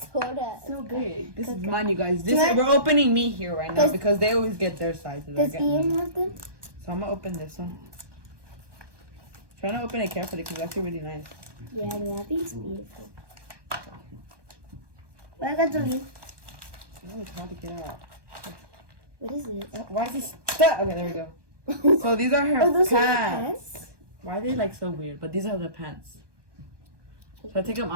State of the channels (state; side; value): late; left; 1.2 ms